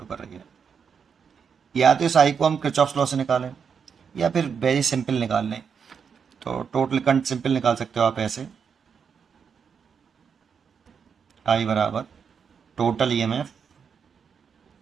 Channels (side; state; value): left; quieter; 6.6 dB